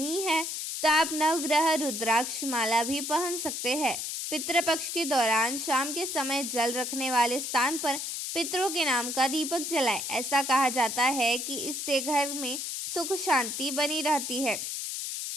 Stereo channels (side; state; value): left; noise; hiss, 4 dB below the sound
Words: है तो आप नवग्रह रुद्राक्ष माला भी पहन सकते हैं। पितृपक्ष के दौरान शाम के समय जल रखने वाले स्थान पर पितरों के नाम का दीपक जलाएं। ऐसा कहा जाता है कि इससे घर में सुख शांति बनी रहती है।